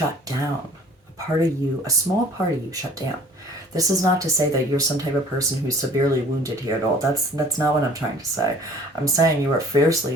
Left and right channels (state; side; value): normal; both; correlation 0.51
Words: down. A part of you, a small part of you shut down. This is not to say that you're some type of person who's severely wounded here at all. That's not what I'm trying to say. I'm saying you are fiercely